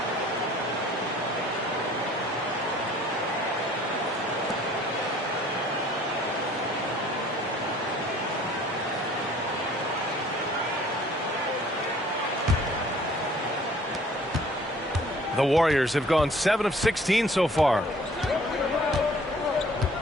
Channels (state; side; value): normal; both; correlation 0.54